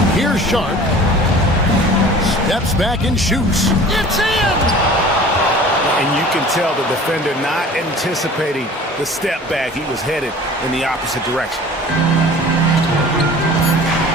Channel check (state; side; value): normal; both; correlation 0.44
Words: Here's Sharp. Steps back and shoots. It's in! And you can tell the defender not anticipating the step back. He was headed in the opposite direction.